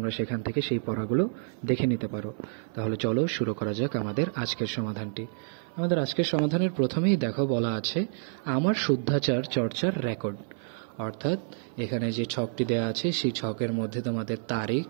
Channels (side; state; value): left; silent; 56 dB below the other